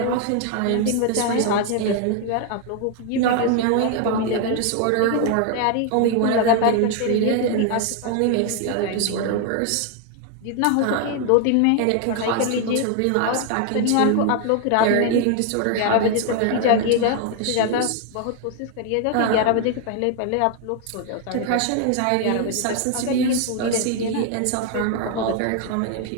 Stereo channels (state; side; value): different; both; correlation 0.00